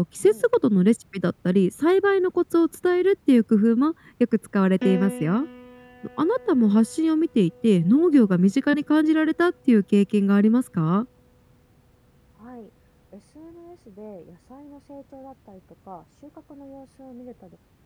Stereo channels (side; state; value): both; identical; correlation 1.00